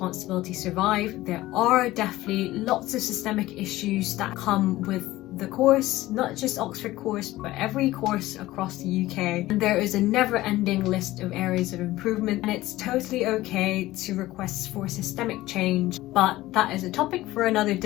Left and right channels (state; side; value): quieter; right; 17.0 dB